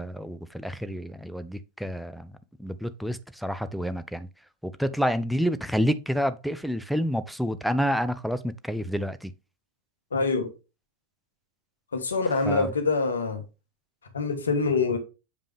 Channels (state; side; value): normal; both; correlation 0.31